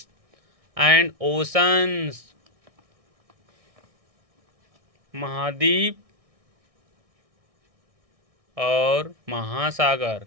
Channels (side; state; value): left; late; 1.6 ms